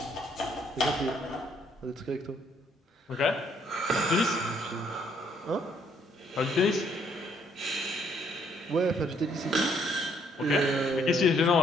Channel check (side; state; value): both; normal; correlation 0.67